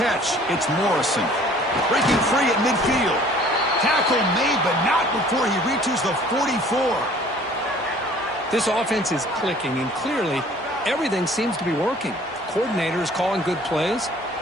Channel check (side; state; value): both; normal; correlation 0.52